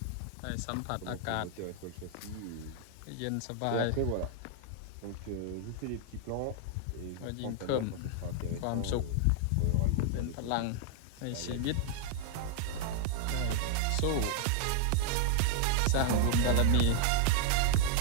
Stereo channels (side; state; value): both; different; correlation 0.00